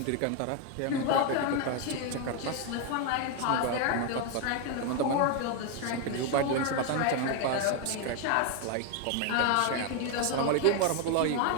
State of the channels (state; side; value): different; both; correlation 0.01